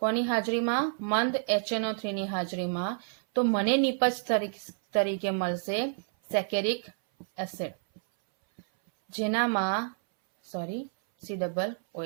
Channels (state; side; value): silent; left; 58 dB below the other